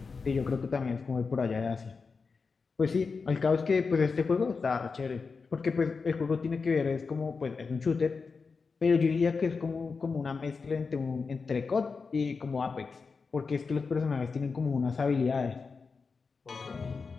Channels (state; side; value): quieter; right; 4.8 dB